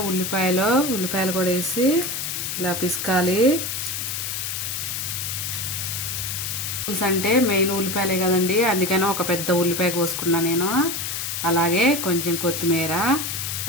ఉల్లిపాయలు కూడా వేసి ఇలా పిసకాలి. పులుసు అంటే మెయిన్ ఉల్లిపాయలే కదండి, అందుకని ఒక పెద్ద ఉల్లిపాయ కోసుకున్నా నేను. అలాగే కొంచెం కొత్తిమీర.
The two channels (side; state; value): left; noise; hiss, 3 dB below the sound